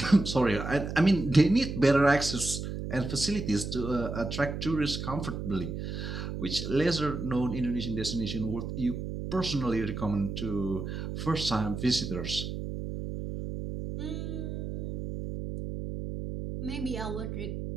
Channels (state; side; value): noise; right; hum, 5 dB below the sound